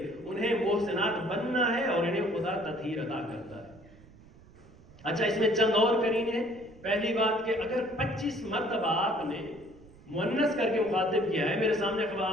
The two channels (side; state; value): right; noise; rumble, 23 dB below the sound